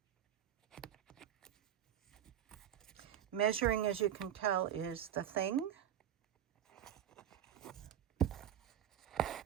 Measuring, as you can tell, is the thing.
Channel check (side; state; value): left; quieter; 10.4 dB